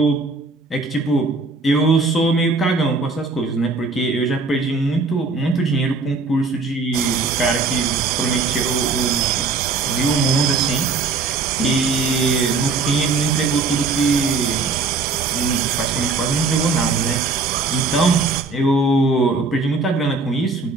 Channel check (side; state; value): left; quieter; 4.0 dB